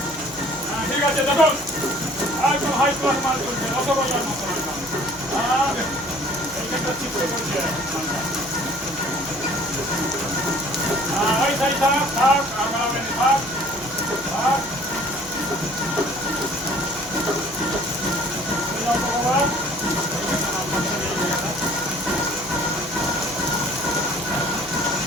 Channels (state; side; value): noise; right; hum, 20 dB below the sound